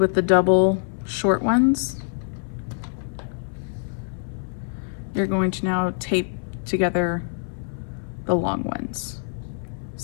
the double short ones, you're going to now tape together the long ones.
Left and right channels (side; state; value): right; silent; 62 dB below the other